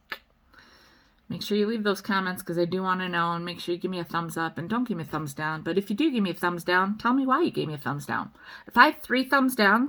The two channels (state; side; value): identical; both; correlation 1.00